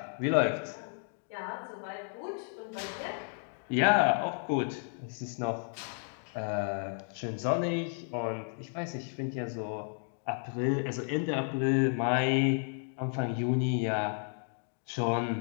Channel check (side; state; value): right; silent; 56 dB below the other